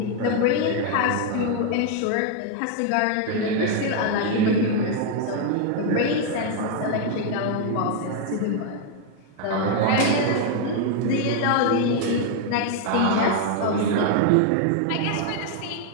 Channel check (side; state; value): both; different; correlation 0.00